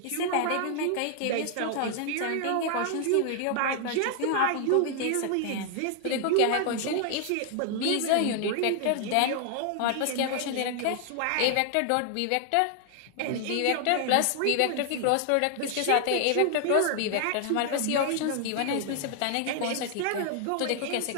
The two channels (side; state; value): both; different; correlation 0.00